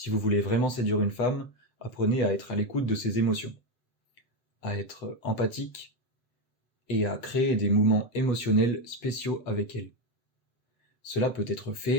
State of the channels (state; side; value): late; right; 7.8 ms